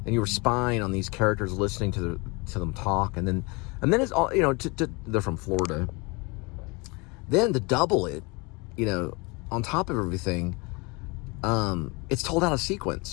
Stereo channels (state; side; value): quieter; right; 28.1 dB